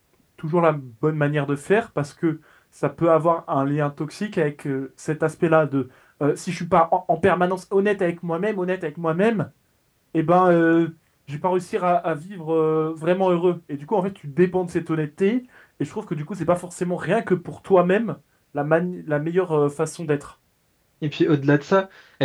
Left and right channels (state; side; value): identical; both; correlation 1.00